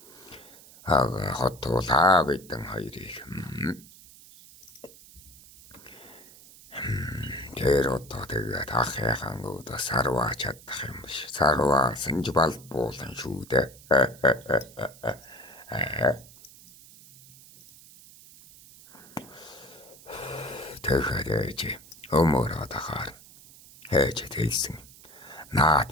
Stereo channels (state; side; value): noise; right; hiss, 21 dB below the sound